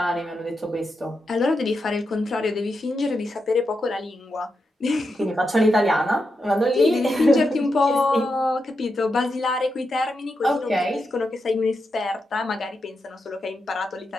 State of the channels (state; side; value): normal; both; correlation 0.86